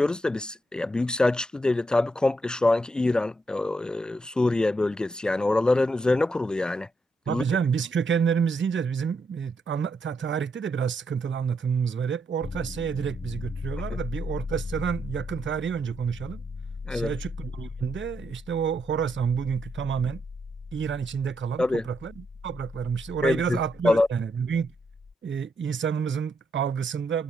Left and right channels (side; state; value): both; normal; correlation 0.79